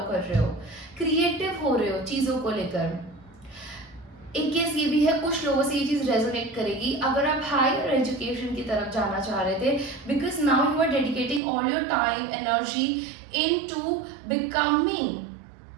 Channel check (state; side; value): drops out; left; at 11.4 s